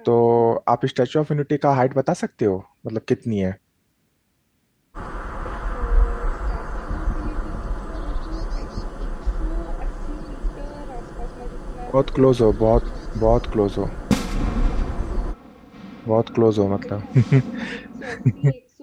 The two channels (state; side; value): identical; both; correlation 1.00